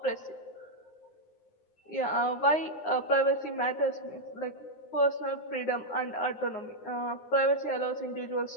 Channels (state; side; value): late; right; 9.6 ms